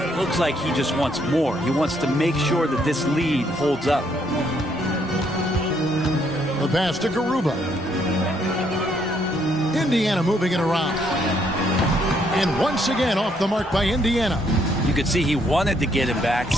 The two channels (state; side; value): normal; both; correlation 0.71